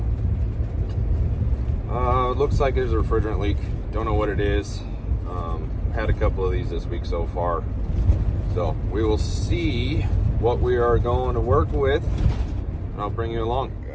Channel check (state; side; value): identical; both; correlation 1.00